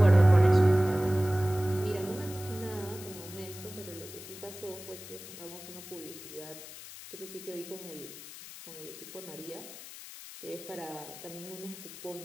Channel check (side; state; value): left; noise; hiss, 14 dB below the sound